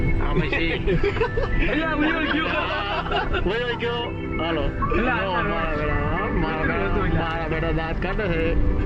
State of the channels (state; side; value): identical; both; correlation 1.00